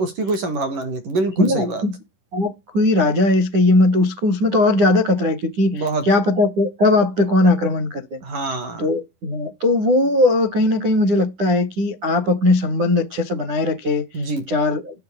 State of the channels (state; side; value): late; left; 11 ms